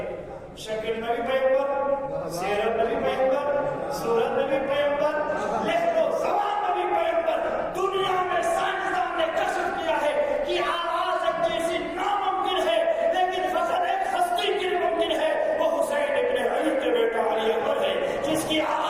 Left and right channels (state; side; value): identical; both; correlation 1.00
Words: شکل میں بھی پیغمبر، سیرت میں بھی پیغمبر، صورت میں بھی پیغمبر، لہو و زبان میں بھی پیغمبر. دنیا میں سائنسدان نے کشف کیا ہے کہ آواز ایک جیسی ناممکن ہے، لیکن فقط ایک ہستی کی ممکن ہے. وہ حسین ابن علی کے بیٹا علی اکبر ہے، جس کی